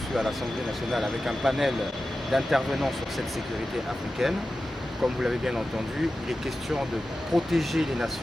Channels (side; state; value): both; normal; correlation 0.93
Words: à l'Assemblée nationale avec un panel d'intervenants sur cette sécurité africaine. Comme vous l'avez bien entendu, il est question de protéger les